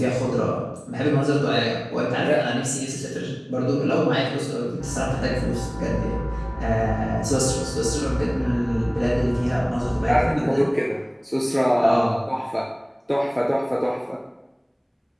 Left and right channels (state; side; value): identical; both; correlation 1.00